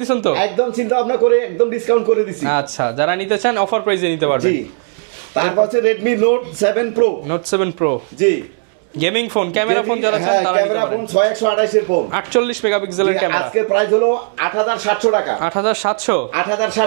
দিছেন তো? একদম চিন্তা ভাবনা করে একদম ডিসকাউন্ট করে দিছি। আচ্ছা, যারা নিতে চান অফার প্রাইসে নিতে পারবেন। জি, তারপর হচ্ছে Redmi Note 7 Pro। জি গেমিং ফোন, ক্যামেরা ফোন, হ্যাঁ ক্যামেরা ফোন 6128 এর ফোন, 48 মেগাপিক্সেলের ক্যামেরা। আজকের প্রাইস হলো 8700 টাকা।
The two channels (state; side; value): silent; left; 58 dB below the other